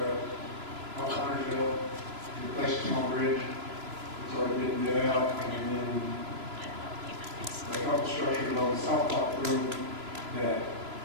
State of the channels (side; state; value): left; late; 3.0 ms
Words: out Huntersville, replace a small bridge. It's already been bid out, and then a couple structures on the South Pocket Road that